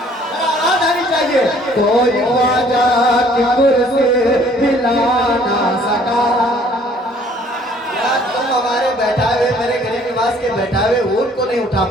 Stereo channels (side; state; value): both; normal; correlation 0.58